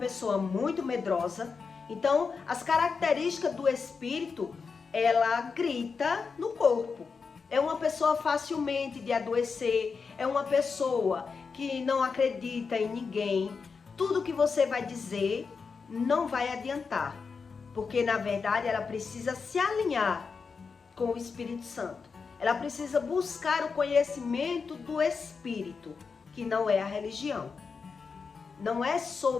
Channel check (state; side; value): quieter; right; 5.2 dB